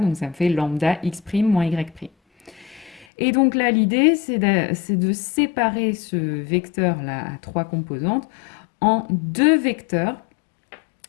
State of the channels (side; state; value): right; drops out; at 3.1 s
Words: ça me fait lambda x' moins y'. Et donc là, l'idée, c'est de séparer ce vecteur-là à trois composantes en deux vecteurs,